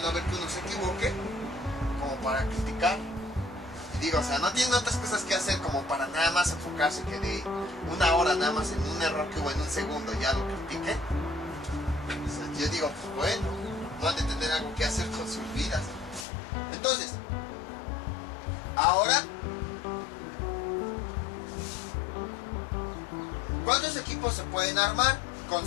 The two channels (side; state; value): right; drops out; at 16.2 s